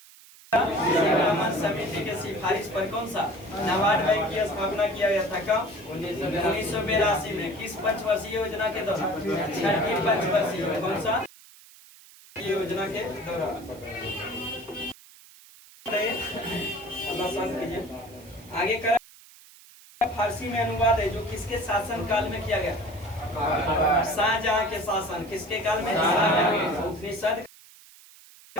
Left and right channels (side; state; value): right; noise; hiss, 22 dB below the sound